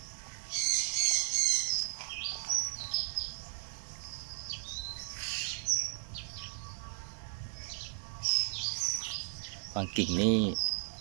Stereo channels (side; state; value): left; silent; 54 dB below the other